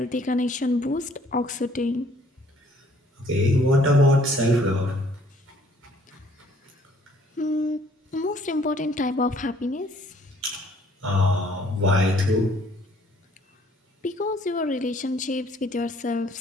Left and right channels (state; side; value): normal; both; correlation 0.61